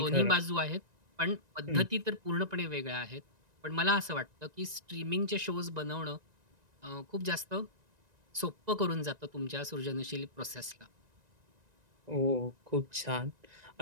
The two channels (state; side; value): late; left; 1.9 ms